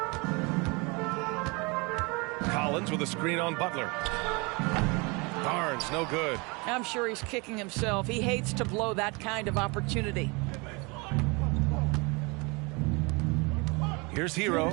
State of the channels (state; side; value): quieter; left; 28.3 dB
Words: Collins with a screen on Butler. Barnes, no good. I'm sure he's kicking himself. He hates to blow that kind of opportunity. Here's Hero.